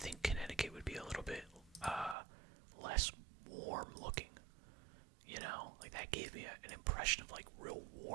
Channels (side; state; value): left; drops out; at 2.1 s